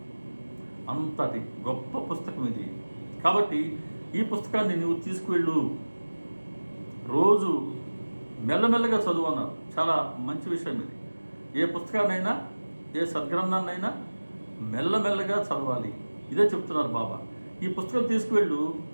అంతటి గొప్ప పుస్తకం ఇది. కాబట్టి ఈ పుస్తకాన్ని నువ్వు తీసుకువెళ్ళు, రోజు మెల్లమెల్లగా చదువు అన్నారు. చాలా మంచి విషయం ఇది. ఏ పుస్తకాన్నైనా, ఏ సద్గ్రంథాన్నైనా మెల్లమెల్లగా చదవాలి. ఇదే చెప్తున్నారు బాబా. ఈ పుస్తకం తీసుకువెళ్ళు,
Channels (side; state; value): both; inverted; correlation -1.00